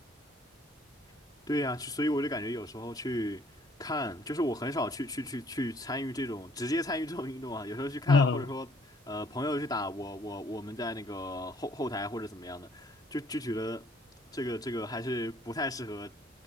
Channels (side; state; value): both; normal; correlation 0.62